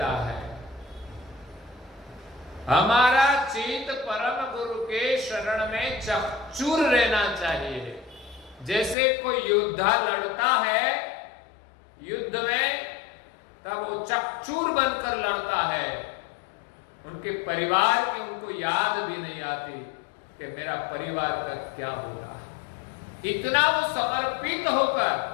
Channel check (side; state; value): right; drops out; at 9.0 s